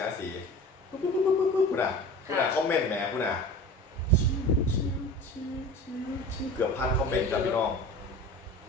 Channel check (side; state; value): both; normal; correlation 0.37